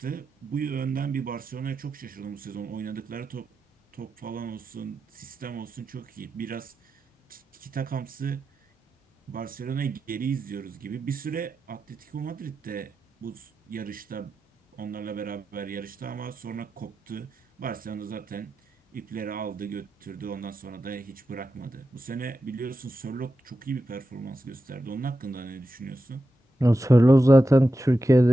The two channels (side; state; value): both; normal; correlation 0.90